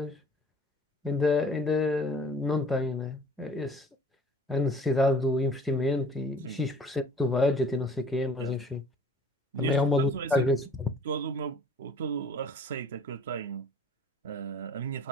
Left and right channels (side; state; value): both; normal; correlation 0.51